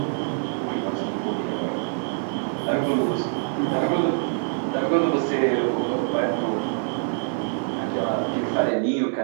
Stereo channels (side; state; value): left; silent; 60 dB below the other